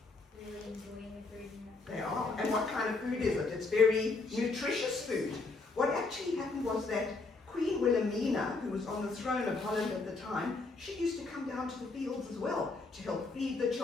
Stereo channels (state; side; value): quieter; right; 3.7 dB